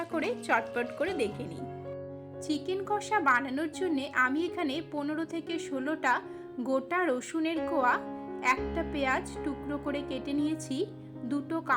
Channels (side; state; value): both; identical; correlation 1.00